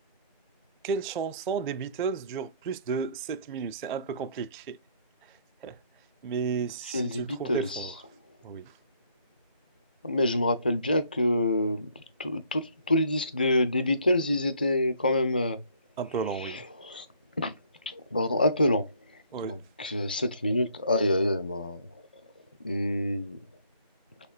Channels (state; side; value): inverted; both; correlation -0.62